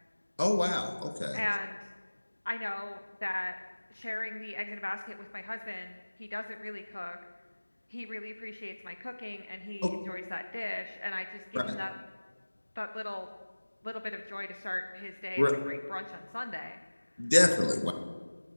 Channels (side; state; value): both; inverted; correlation -1.00